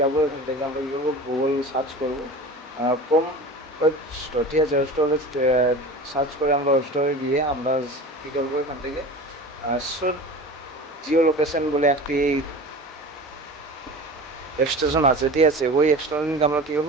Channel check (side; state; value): both; normal; correlation 0.35